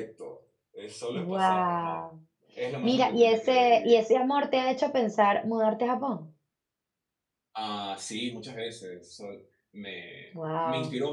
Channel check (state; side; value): identical; both; correlation 1.00